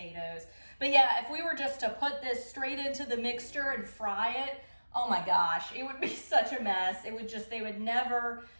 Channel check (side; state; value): both; inverted; correlation -1.00